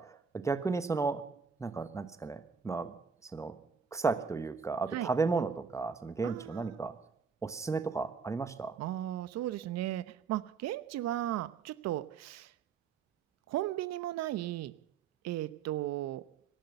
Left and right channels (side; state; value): left; quieter; 6.0 dB